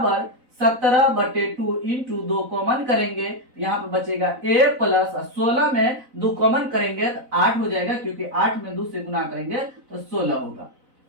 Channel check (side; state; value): left; late; 4.0 ms